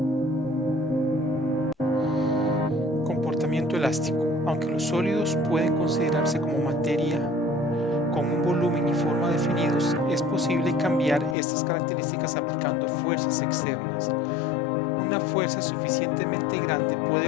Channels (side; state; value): right; drops out; at 11.4 s